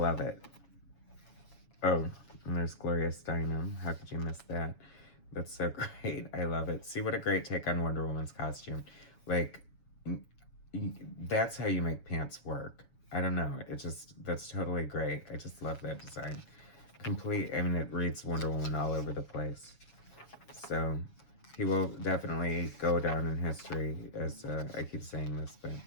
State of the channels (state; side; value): late; right; 7.2 ms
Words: it. Oh, and there's Gloria Steinem, how could you miss that? That's so great. I love it. See, what a great take on Wonder Woman's costume. Like, that's how you make pants work. I don't know. It just, that's totally great. I just love that design. Complete, I mean, it reads Wonder Woman all over the place. So, he will definitely go down in history as, I keep saying this, but